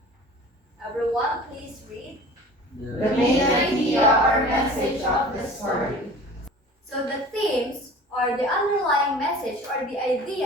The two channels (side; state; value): both; normal; correlation 0.42